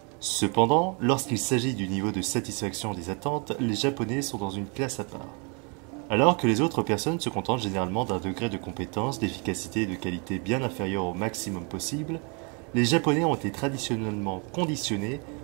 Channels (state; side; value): quieter; left; 34.1 dB